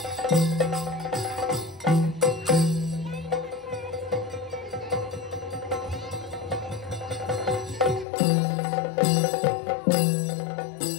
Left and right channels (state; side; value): drops out; right; at 8.1 s